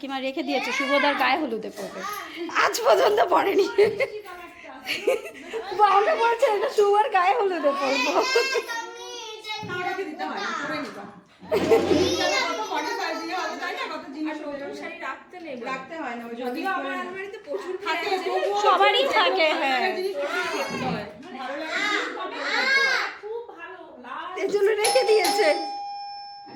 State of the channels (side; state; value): both; identical; correlation 1.00